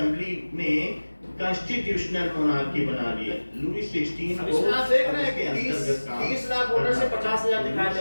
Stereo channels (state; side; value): inverted; both; correlation -1.00